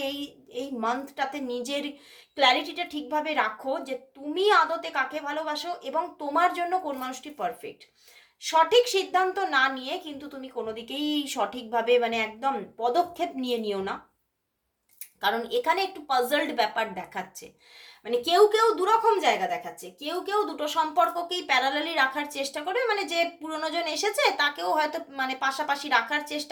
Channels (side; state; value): both; identical; correlation 1.00